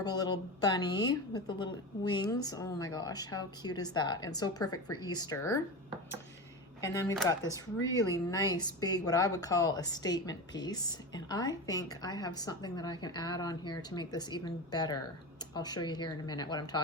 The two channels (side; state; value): both; normal; correlation 0.24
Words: little bunny with the little wings. Oh my gosh, how cute is that? And so perfect for Easter. And then we've got this really nice big, what I would call a statement piece. And I think I have something that I can add on here to make this even better. I'll show you here in a minute what I'm